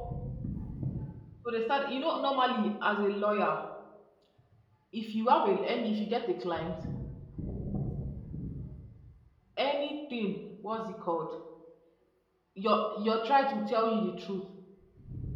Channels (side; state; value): both; identical; correlation 1.00